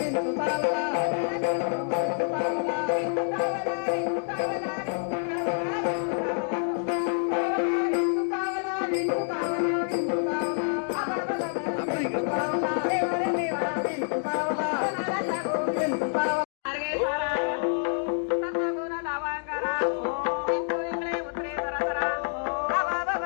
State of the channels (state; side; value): silent; right; digital silence